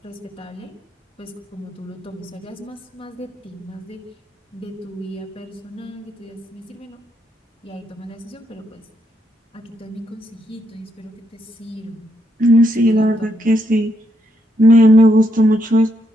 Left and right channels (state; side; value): normal; both; correlation 0.77